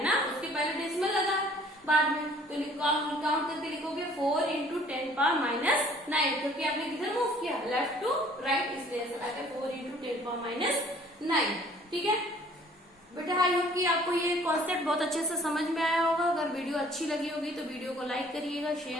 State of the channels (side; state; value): both; normal; correlation 0.55